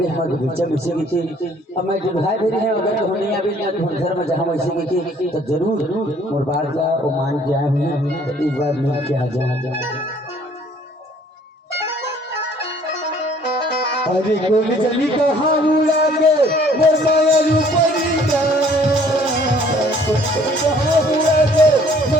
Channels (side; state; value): both; normal; correlation 0.58